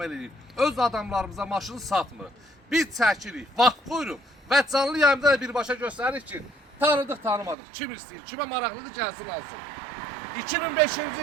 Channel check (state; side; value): drops out; left; at 7.6 s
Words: edirik. Öz adamlarımıza maşını satmır. Biz çəkirik, vaxt qoyuruq və canlı yayımda da birbaşa göstəririk ki, tanıdıq, tanımadıq. Kim istəyir, kimə maraqlıdır gəlsin alsın.